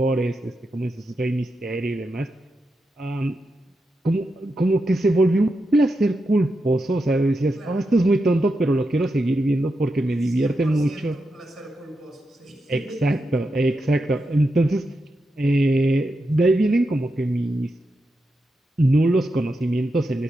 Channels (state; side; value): normal; both; correlation 0.87